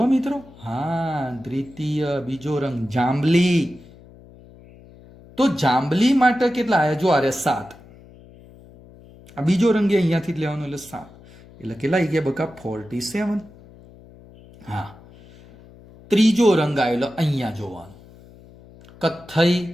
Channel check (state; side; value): noise; left; hum, 23 dB below the sound